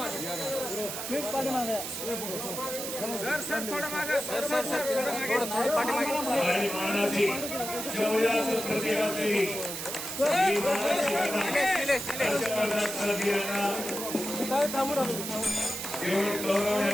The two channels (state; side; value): noise; right; hiss, 6 dB below the sound